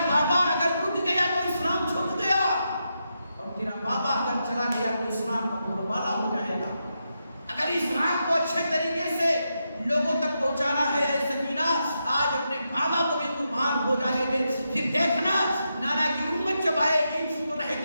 بابا اگر اٹھ گیا تو اسلام چھپ گیا، اور تیرا بابا اگر چلا گیا تو اسلام کا بولبالا ہو جائے گا۔ اگر اسلام کو اچھے طریقے سے لوگوں تک پہنچانا ہے، اے سکینہ آج اپنے بابا کو بھی قربان ہو جانے دے، پھر دیکھنا نانا کی امت جب آئے گی تو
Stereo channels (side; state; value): both; inverted; correlation -0.85